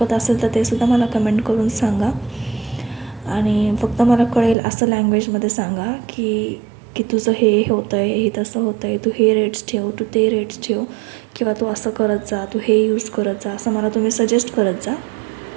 असेल तर ते सुद्धा मला कमेंट करून सांगा. आणि फक्त मला कळेल असं लँग्वेजमध्ये सांगा की की तुझं हे होतं आहे, हे तसं होतं आहे, तू हे रेट्स ठेव, तू ते रेट्स ठेव, किंवा तू असं करत जा, तू हे यूज करत जा, असं मला तुम्ही सजेस्ट करत जा.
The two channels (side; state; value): left; drops out; at 4.5 s